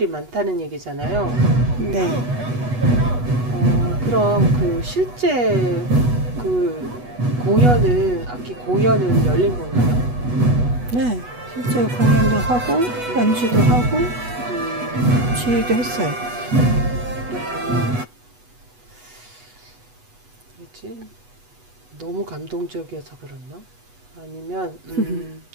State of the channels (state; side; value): late; left; 8.2 ms